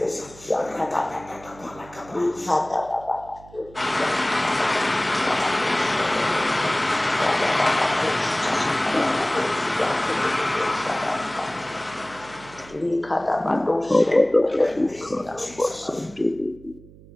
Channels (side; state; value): right; noise; hum, 22 dB below the sound